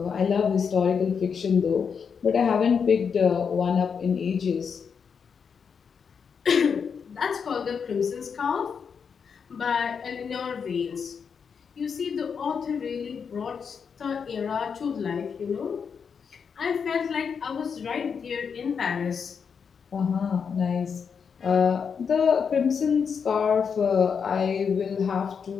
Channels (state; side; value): quieter; right; 6.4 dB